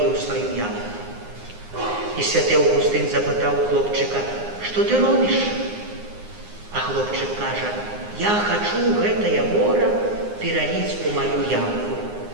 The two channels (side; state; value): left; late; 9.7 ms